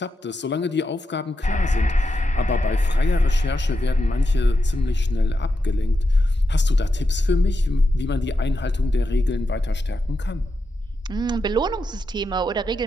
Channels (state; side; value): normal; both; correlation 0.87